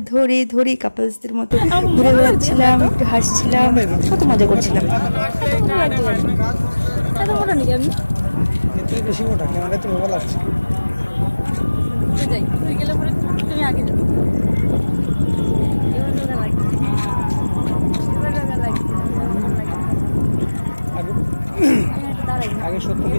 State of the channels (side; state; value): both; inverted; correlation -1.00